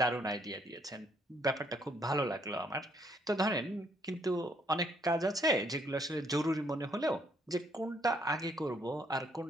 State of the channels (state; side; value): normal; both; correlation 0.68